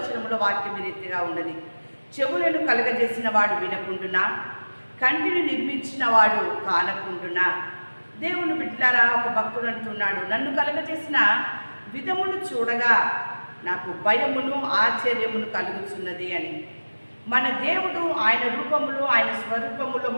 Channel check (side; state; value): both; inverted; correlation -1.00